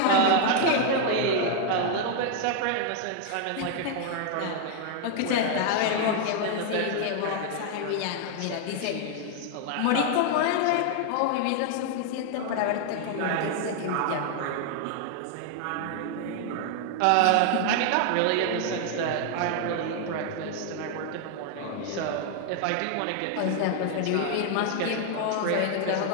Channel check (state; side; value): different; both; correlation 0.00